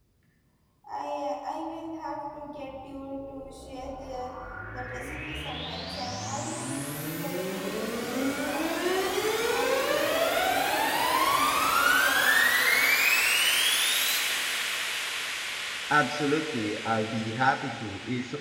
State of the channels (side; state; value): both; identical; correlation 1.00